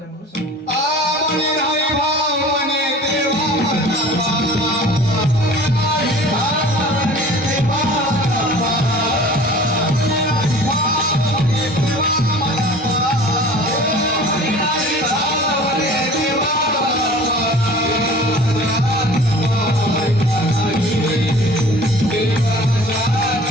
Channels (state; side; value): normal; both; correlation 0.44